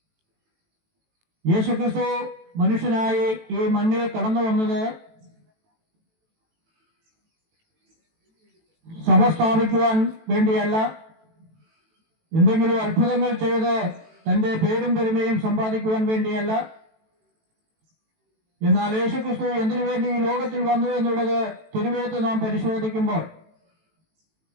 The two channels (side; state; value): left; late; 18 ms